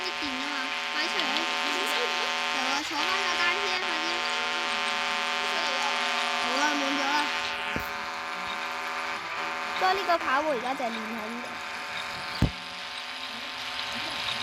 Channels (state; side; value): identical; both; correlation 1.00